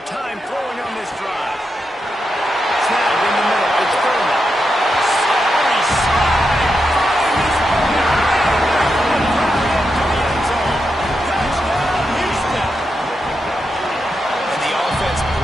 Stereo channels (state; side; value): normal; both; correlation 0.86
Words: time throwing on this drive. Snap in the middle. It's Furman. Sorry, slide. Finding his way right from the crowd into the end zone. Touchdown, Houston. And the offense